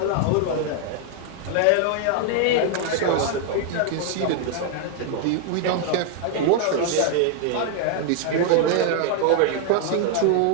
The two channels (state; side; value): different; both; correlation 0.00